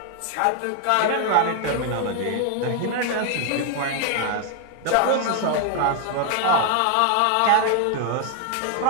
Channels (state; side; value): different; both; correlation 0.00